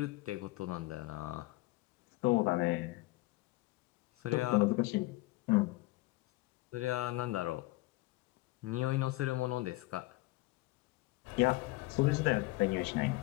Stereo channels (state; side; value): quieter; right; 20.4 dB